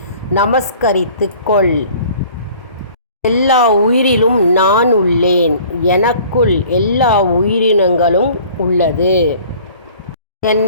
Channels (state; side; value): inverted; both; correlation -0.50